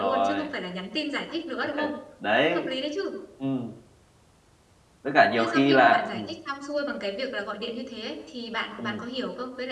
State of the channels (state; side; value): identical; both; correlation 1.00